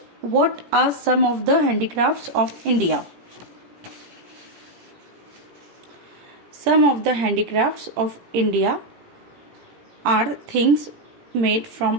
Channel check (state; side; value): late; left; 17 ms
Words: what are some of the handicrafts of India? Some of the handicrafts of India are things made